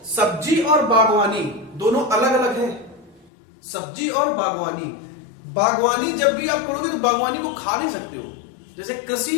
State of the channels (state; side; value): drops out; right; at 3.2 s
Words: सब्जी और बागवानी दोनों अलग अलग है। सब्जी और बागवानी, बागवानी जब भी आप करोगे तो बागवानी को खा नहीं सकते हो। जैसे कृषि